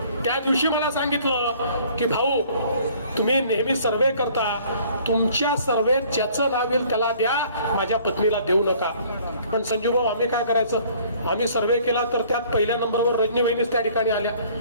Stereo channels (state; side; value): inverted; both; correlation -0.56